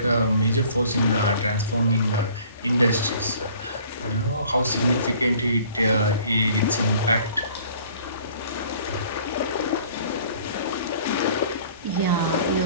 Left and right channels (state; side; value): inverted; both; correlation -0.53